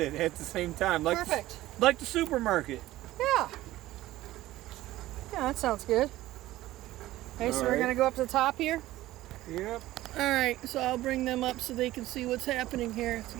at the same time, like perfect. like the supermarket. Yeah. Yeah, that sounds good. Okay, so All we're right. going to go up to the top here. Yep. All right, so I'll bring them up so they can see what's happening here to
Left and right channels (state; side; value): quieter; left; 16.0 dB